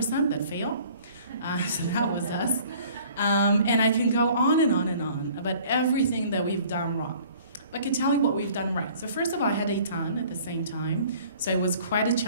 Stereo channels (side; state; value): both; inverted; correlation -0.52